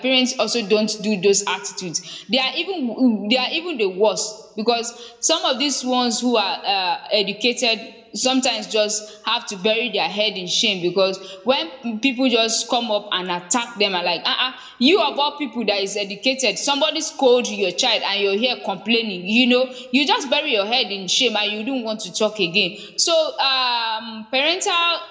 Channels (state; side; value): identical; both; correlation 1.00